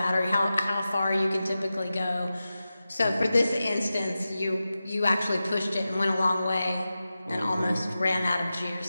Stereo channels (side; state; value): both; inverted; correlation -0.93